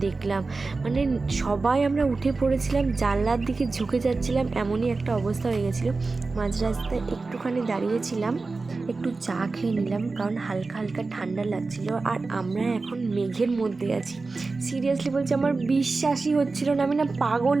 দেখলাম, মানে সবাই আমরা উঠে পড়েছিলাম, জানলার দিকে ঝুঁকে যাচ্ছিলাম, এমনই একটা অবস্থা হয়ে গেছিলো। মাঝ রাস্তায় একটুখানি দাঁড়িয়েছিলাম, একটু চা খেয়ে নিলাম, কারণ হালকা হালকা ঠান্ডা লাগছিল। আর আমরা এখন মেঘের মধ্যে আছি। সিরিয়াসলি বলছি, আমার বিশ্বাসই হচ্ছিল না, আমি না পাগল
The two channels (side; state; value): left; quieter; 3.8 dB